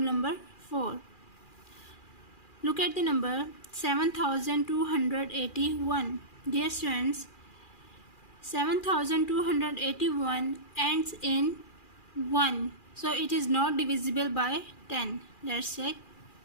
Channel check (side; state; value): right; late; 2.4 ms